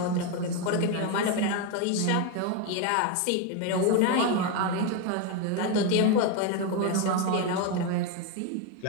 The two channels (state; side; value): different; both; correlation 0.02